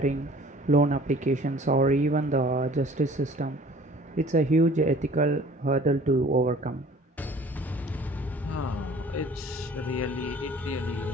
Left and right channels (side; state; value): both; normal; correlation 0.50